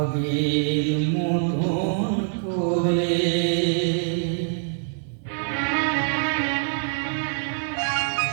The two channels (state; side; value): silent; left; 59 dB below the other